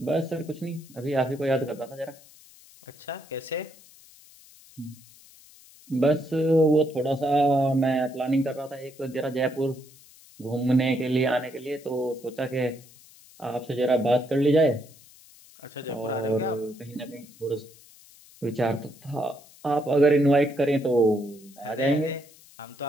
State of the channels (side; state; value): left; noise; hiss, 24 dB below the sound